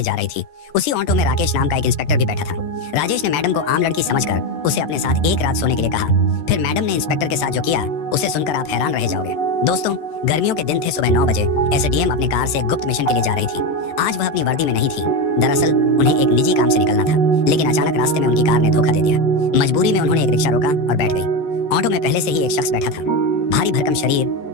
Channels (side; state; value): right; late; 14 ms